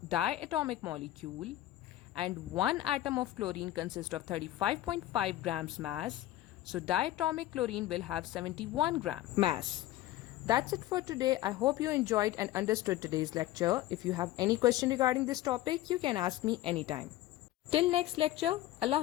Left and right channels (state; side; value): quieter; right; 15.0 dB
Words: diatomic molecule and one atom of chlorine consists of 35.5 grams mass, so diatomic chlorine will have 71 gram mass. That's it for today. I hope you enjoyed and understood today's lecture. If you have any question regarding this topic, you can ask me anytime. Till next lecture, Allah